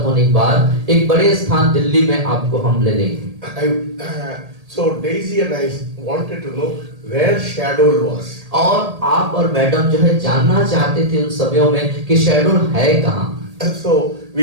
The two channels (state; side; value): late; left; 1.8 ms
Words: होने के बाद एक बड़े स्थान दिल्ली में आपको हम ले लेंगे. So Daisy and I wanted to know where Shadol was. और आप और मैडम जो है जानना चाहते थे उन समयों में कि शहडोल है कहाँ. So